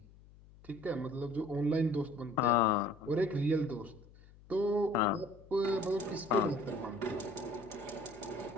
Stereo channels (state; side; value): noise; left; hum, 23 dB below the sound